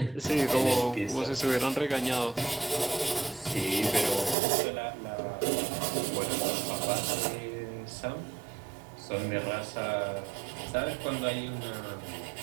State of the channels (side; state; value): left; drops out; at 4.4 s